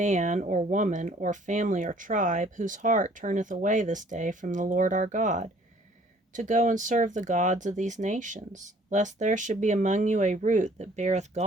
or woman or family or tribe, whose heart turneth away this day from the Lord our God, to go and serve the gods of these nations, lest there should be among you a root that beareth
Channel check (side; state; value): both; normal; correlation 0.57